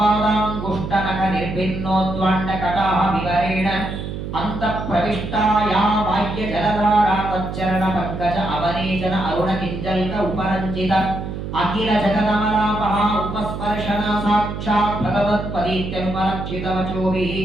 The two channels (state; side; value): noise; right; hum, 6 dB below the sound